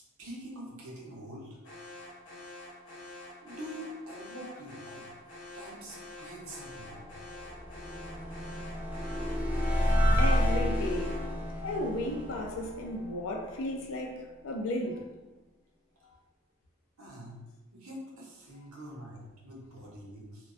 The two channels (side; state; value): both; normal; correlation 0.72